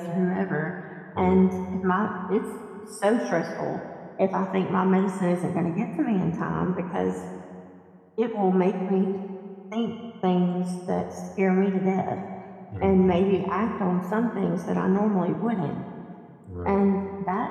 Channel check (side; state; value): both; identical; correlation 1.00